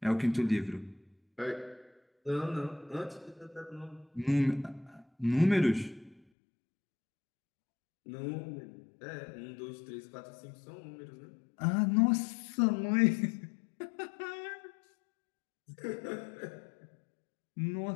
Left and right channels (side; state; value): right; drops out; at 6.2 s